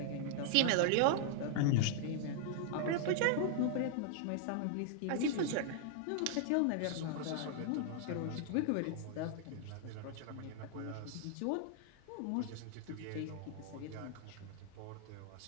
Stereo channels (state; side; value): different; both; correlation -0.01